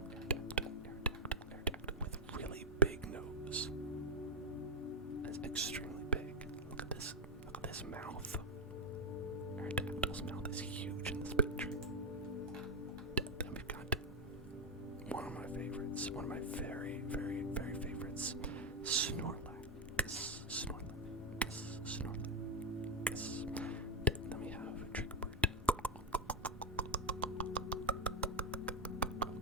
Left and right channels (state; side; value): normal; both; correlation 0.03